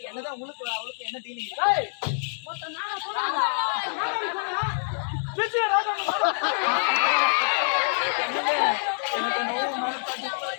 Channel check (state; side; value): silent; right; digital silence